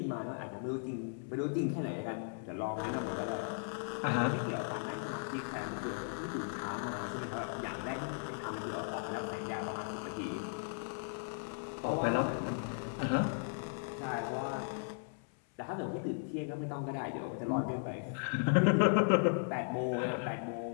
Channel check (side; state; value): right; silent; 53 dB below the other